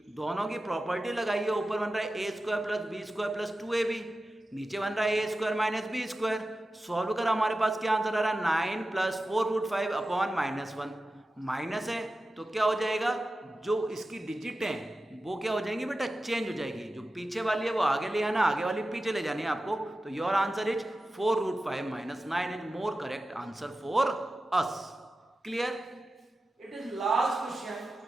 दोनों की प्रॉपर्टी लगाई है. ऊपर बन रहा है a square plus B square plus 2ab, नीचे बन रहा है a square minus B square. Solve कर हमारे पास क्या आंसर आ रहा है 9 plus 4 root 5 upon minus 1. Minus है तो क्या हो जाएगा, जो इसकी डिजिट है वो क्या हो जाएंगी बेटा, चेंज हो जाएगी. जो पीछे वाली है वो आगे ले आना, आगे वाली पीछे ले जानी है आपको. तो your answer is 4 root 5 minus 9 is more correct answer for us. Clear? It is last question,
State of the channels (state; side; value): normal; both; correlation 0.93